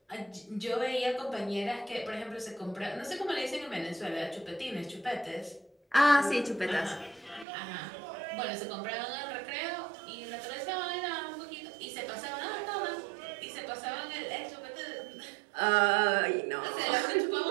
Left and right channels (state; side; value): drops out; left; at 7.5 s